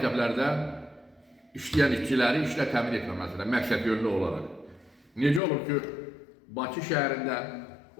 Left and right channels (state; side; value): drops out; right; at 5.4 s